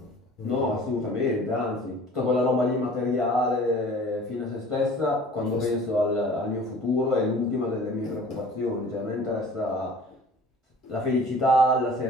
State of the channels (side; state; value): both; normal; correlation 0.46